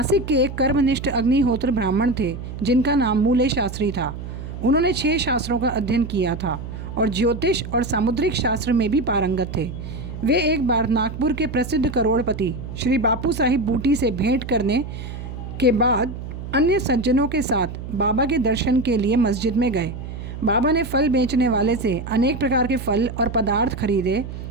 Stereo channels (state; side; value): noise; right; hum, 9 dB below the sound